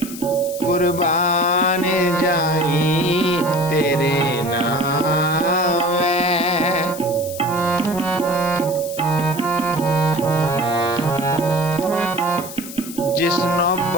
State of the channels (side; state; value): left; noise; hiss, 12 dB below the sound